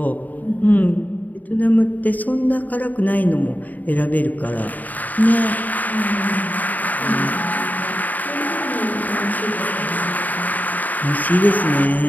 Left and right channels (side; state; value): right; late; 0.081 ms